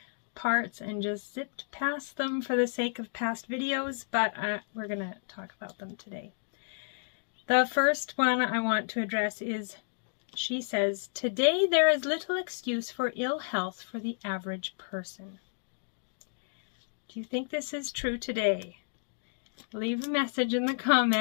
parts and just zipped past them for the sake of past videos, but we're gonna talk about them today. The first one I want to address is, she says, "Today there is little excuse for ill health for the average person." Do you think this is true today? Leave a message in the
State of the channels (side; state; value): right; silent; digital silence